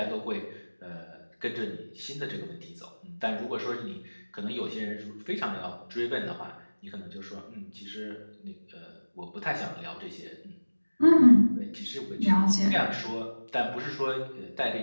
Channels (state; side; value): inverted; both; correlation -1.00